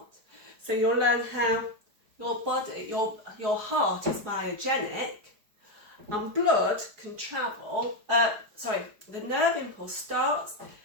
So you'll learn how your body, your heart is biogenic, and blood can travel, the nerve impulse starts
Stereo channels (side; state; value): left; late; 4.9 ms